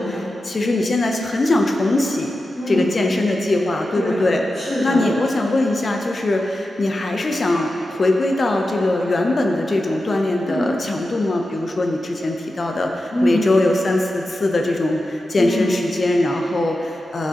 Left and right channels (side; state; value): both; normal; correlation 0.91